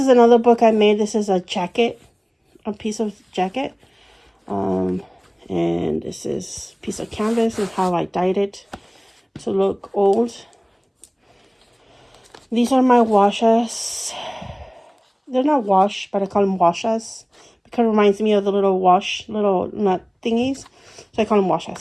another book I made. This is a piece of jacket. And this is a piece of canvas and how I dyed it to look old. These are my washes. They're not wash, but I call them washes because it reminds me of the little nut thingies. So I call them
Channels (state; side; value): identical; both; correlation 1.00